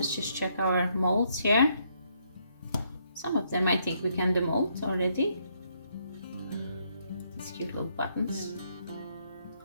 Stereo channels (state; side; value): inverted; both; correlation -0.72